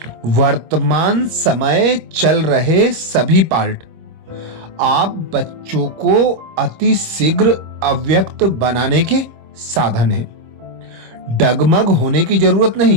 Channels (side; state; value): left; late; 26 ms